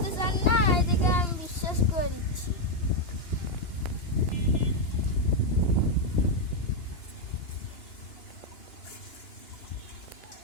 চান না, এদিকে আমি বিশ্বাস করে দিচ্ছি।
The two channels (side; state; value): right; late; 2.9 ms